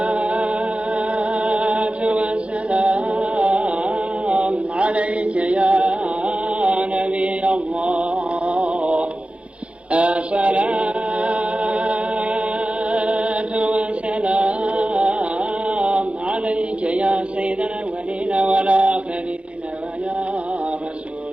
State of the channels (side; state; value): left; late; 0.060 ms